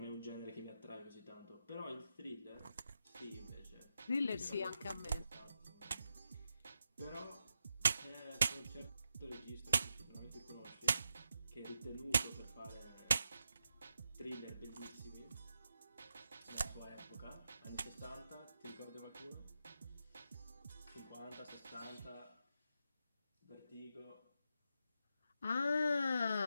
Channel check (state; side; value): inverted; both; correlation -0.85